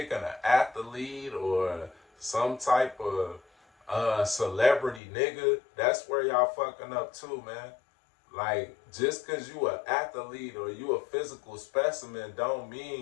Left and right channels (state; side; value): drops out; right; at 5.0 s